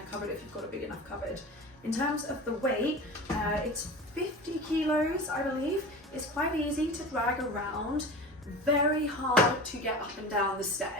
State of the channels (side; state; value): both; normal; correlation 0.33